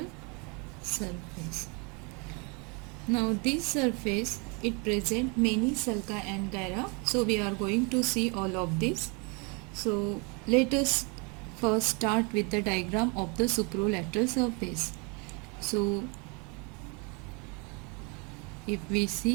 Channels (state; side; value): quieter; left; 32.0 dB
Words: surface. Now this surface, it presents many sulci and gyra. So we are going to see all of this. So let us first start with the diagram of the supralateral surface. So if we